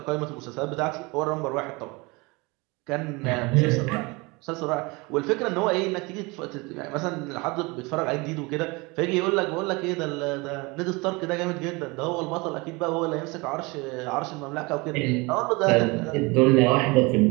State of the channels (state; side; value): quieter; left; 25.8 dB